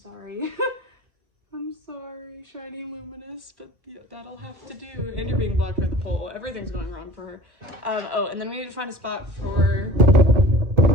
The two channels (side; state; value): left; late; 1.1 ms